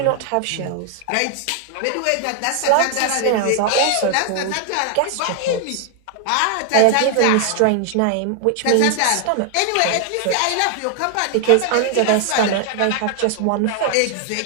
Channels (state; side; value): different; both; correlation 0.00